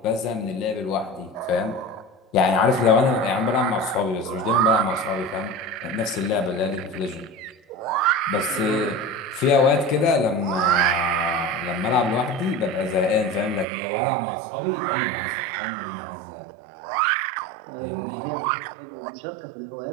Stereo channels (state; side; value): drops out; left; at 13.7 s